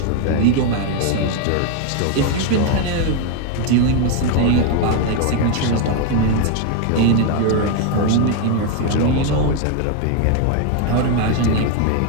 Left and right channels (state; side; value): different; both; correlation 0.01